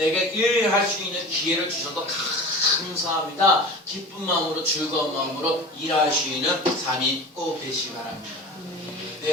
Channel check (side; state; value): both; normal; correlation 0.35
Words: 일할 수 있는 기회를 주셔서 감사합니다. 기쁜 마음으로 즐거운 마음으로 일하시는 삶이 꼭 되시기 바랍니다.